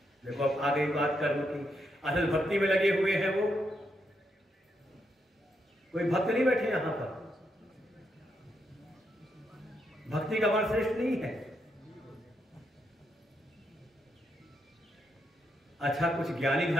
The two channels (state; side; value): normal; both; correlation 0.80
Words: देखो अब आ गई बात कर्म की। असल भक्ति में लगे हुए हैं वो, कोई भक्त नहीं बैठे यहां पर। भक्ति का मार्ग श्रेष्ठ नहीं है। अच्छा, कुछ ज्ञानी